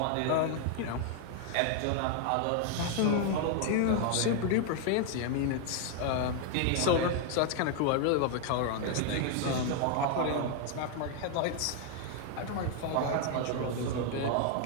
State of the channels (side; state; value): both; different; correlation 0.00